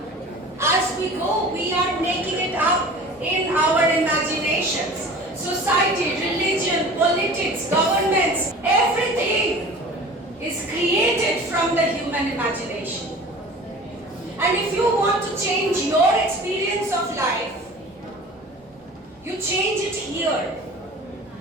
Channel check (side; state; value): both; normal; correlation 0.41